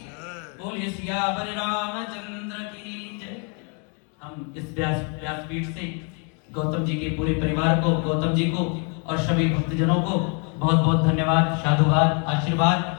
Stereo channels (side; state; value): right; quieter; 37.0 dB